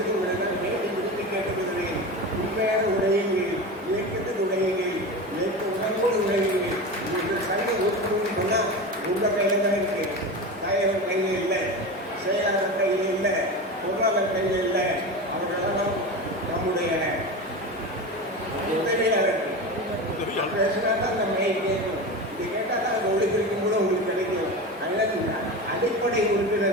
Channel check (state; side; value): normal; both; correlation 0.25